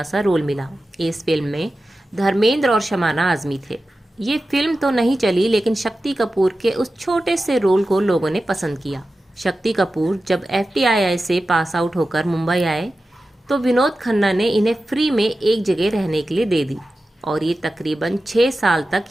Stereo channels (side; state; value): both; normal; correlation 0.93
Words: सा रोल मिला। इस फिल्म में धर्मेंद्र और शमाना आजमी थे। ये फिल्म तो नहीं चली, लेकिन शक्ति कपूर के उस छोटे से रोल को लोगों ने पसंद किया। शक्ति कपूर जब FTII से पास आउट होकर मुंबई आए तो विनोद खन्ना ने इन्हें फ्री में एक जगह रहने के लिए दे दी और ये तकरीबन 6 साल तक